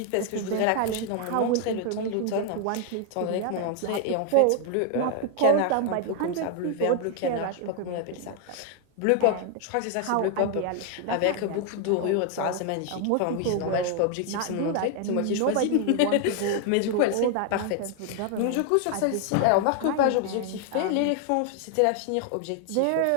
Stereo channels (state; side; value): different; both; correlation 0.00